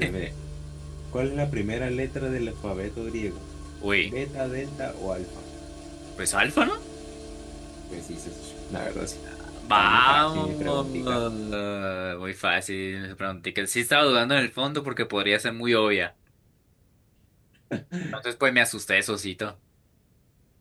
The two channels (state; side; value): identical; both; correlation 1.00